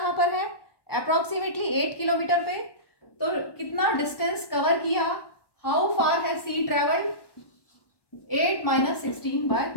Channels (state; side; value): late; right; 1.1 ms